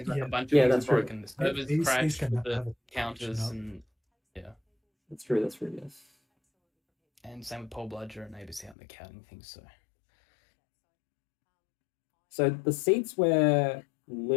like Yeah. a bunch Yeah, of that's things true. broken. The servers These crashed can with have the a counters, up. and That's true. That's true. Yes. and same with Paul Bludger and ABC out there counting things. So the seats where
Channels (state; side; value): drops out; right; at 8.8 s